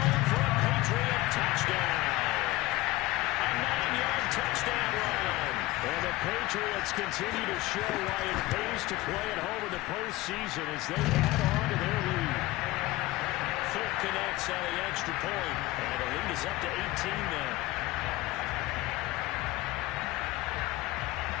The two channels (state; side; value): quieter; right; 18.5 dB